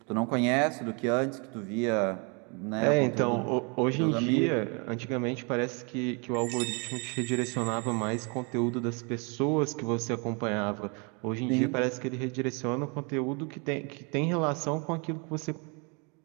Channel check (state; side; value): quieter; left; 33.5 dB